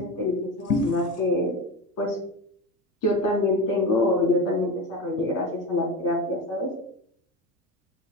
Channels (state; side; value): normal; both; correlation 0.24